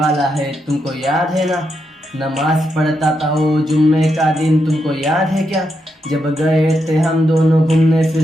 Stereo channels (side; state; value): both; normal; correlation 0.83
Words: है, तुमको याद है ना। नमाज पढ़ता था वो जुम्मे का दिन, तुमको याद है क्या। जब गए थे हम दोनों घूमने